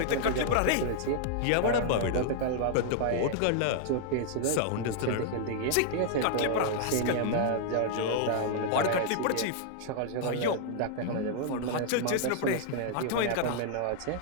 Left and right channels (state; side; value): different; both; correlation -0.01